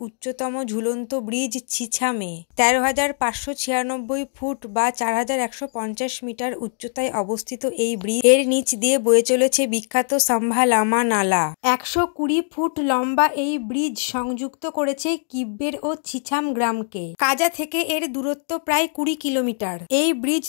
উচ্চতম ঝুলন্ত ব্রিজ ছিছামে ১৩,৫৯৬ ফুট বা ৪,১৫০ মিটার উচ্চতায় অবস্থিত এই ব্রিজ এর নিচ দিয়ে বয়ে চলেছে বিখ্যাত সাম্ভা-লামা নালা। ১২০ ফুট লম্বা এই ব্রিজ সংযুক্ত করেছে কিব্বের ও ছিছাম গ্রামকে। কাজা থেকে এর দূরত্ব প্রায় ২০ কিলোমিটার। এই ব্রিজ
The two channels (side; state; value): right; silent; 64 dB below the other